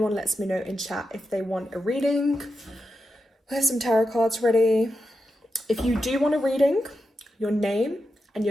lets me know in chat if they want a reading. I have some tarot cards ready. If you do want a reading, your name and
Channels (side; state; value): both; normal; correlation 0.89